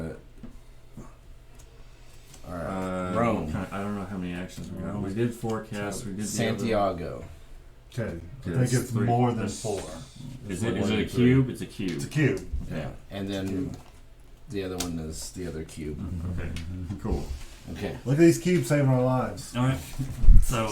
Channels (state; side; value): identical; both; correlation 1.00